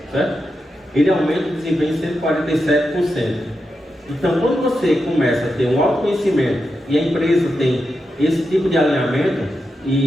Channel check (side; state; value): both; normal; correlation 0.88